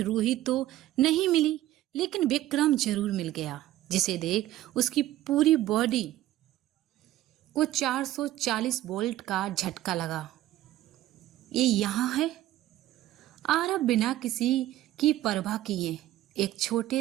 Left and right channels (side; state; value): left; quieter; 14.5 dB